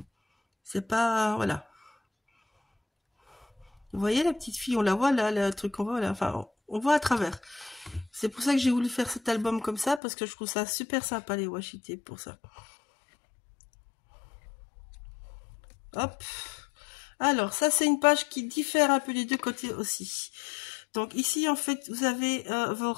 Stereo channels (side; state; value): right; drops out; at 10.0 s